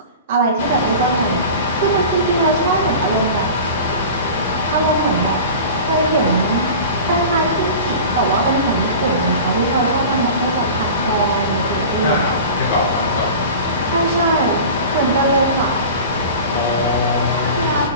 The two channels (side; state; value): both; inverted; correlation -0.36